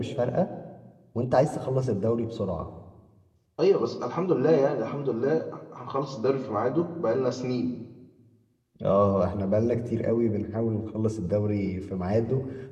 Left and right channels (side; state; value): both; identical; correlation 1.00